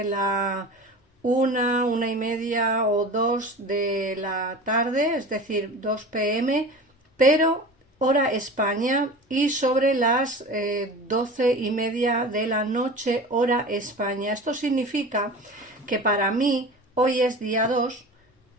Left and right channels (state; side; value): normal; both; correlation 0.35